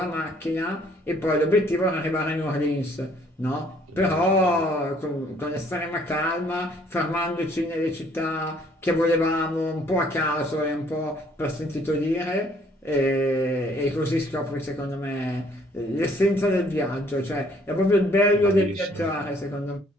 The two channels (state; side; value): normal; both; correlation 0.62